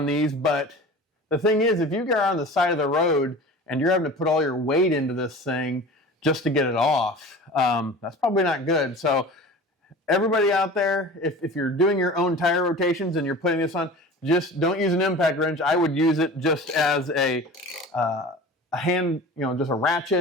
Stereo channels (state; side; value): normal; both; correlation 0.38